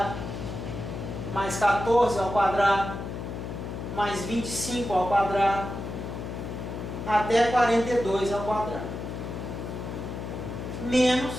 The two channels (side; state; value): left; noise; hum, 7 dB below the sound